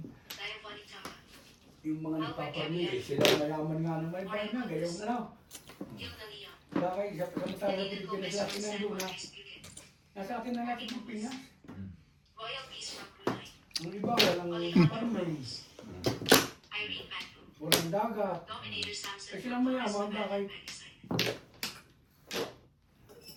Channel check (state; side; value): identical; both; correlation 1.00